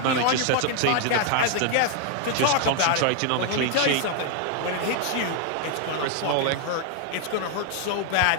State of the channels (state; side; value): different; both; correlation 0.00